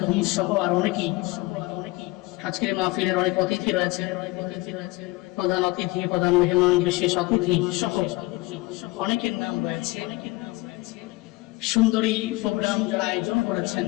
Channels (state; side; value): quieter; right; 21.6 dB